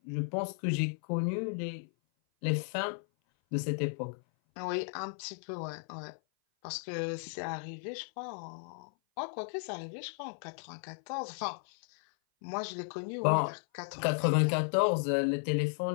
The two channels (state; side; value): silent; right; 55 dB below the other